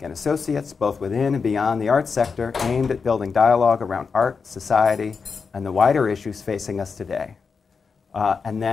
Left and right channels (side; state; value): right; quieter; 5.3 dB